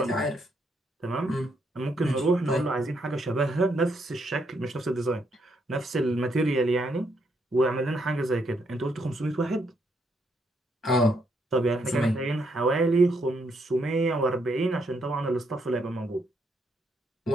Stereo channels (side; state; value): both; normal; correlation 0.75